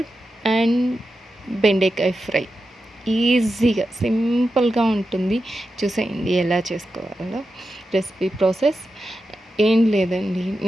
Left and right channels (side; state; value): both; normal; correlation 0.90